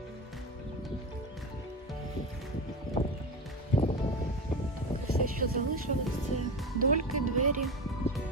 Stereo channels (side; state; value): both; normal; correlation 0.23